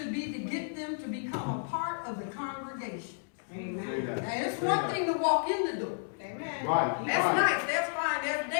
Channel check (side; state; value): right; silent; digital silence